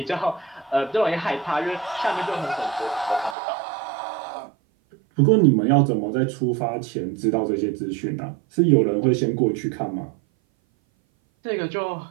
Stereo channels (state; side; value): drops out; left; at 3.4 s